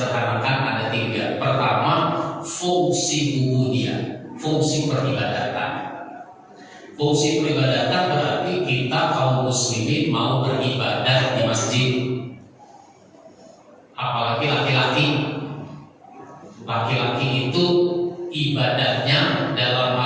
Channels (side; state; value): both; identical; correlation 1.00